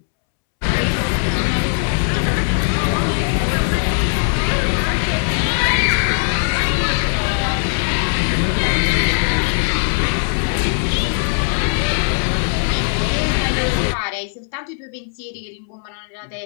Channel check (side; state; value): right; silent; 67 dB below the other